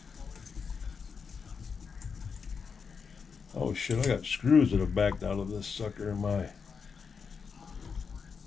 Oh shit! I got screws that have backed out of this sucker in my.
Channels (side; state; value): right; quieter; 5.8 dB